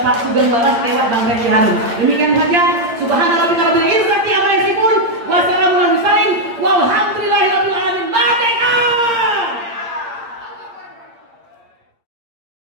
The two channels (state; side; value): late; left; 8.7 ms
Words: Sugeng Waras lewat Bang Refli Harun. Demikian saja. Subhanallah.